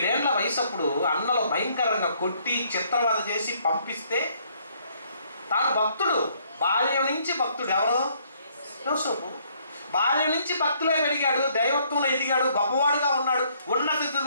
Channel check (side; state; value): both; inverted; correlation -0.66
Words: ఏళ్ల వయసు అప్పుడు అన్నలు భయంకరంగా కొట్టి చిత్రవద చేసి పంపిస్తే తాను భక్తుడు, బాల్యం నుంచి భక్తుడు. ఎవరు? యోసేపు. బాల్యం నుంచి భక్తులే పెరిగాడు, దైవత్వంలో ఎదిగాడు, గొప్పవాడుగా ఉన్నాడు, ఉన్నత